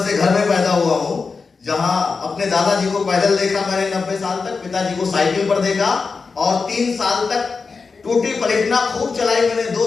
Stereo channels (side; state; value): right; quieter; 4.7 dB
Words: घर में पैदा हुआ हूं जहां अपने दादाजी को पैदल देखा मैंने 90 साल तक, पिताजी को साइकिल पर देखा, और 3 साल तक टूटी प्लेटिना खूब चलाई मैंने,